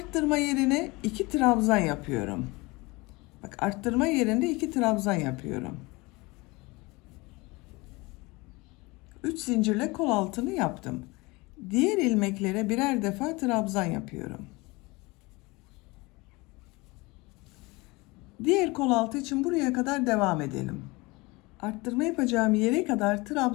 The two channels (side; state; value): right; quieter; 24.1 dB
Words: yerine 2 trabzan yapıyorum. Bak arttırma yerinde 2 trabzan yapıyorum. 3 zincirle kol altını yaptım. Diğer ilmeklere birer defa trabzan yapıyorum. Diğer kol altı için buraya kadar devam edelim. Arttırma yapacağım yere kadar